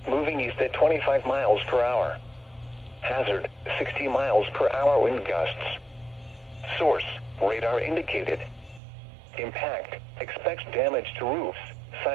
moving east at 25 miles per hour. Hazard, 60 miles per hour wind gusts. Source, radar indicated. Impact, expects damage to roofs,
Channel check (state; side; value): drops out; left; at 8.8 s